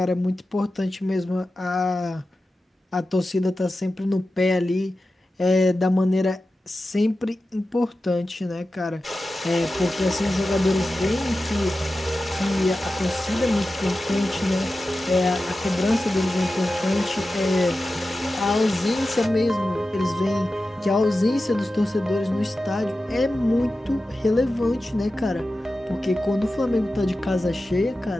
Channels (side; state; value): both; normal; correlation 0.93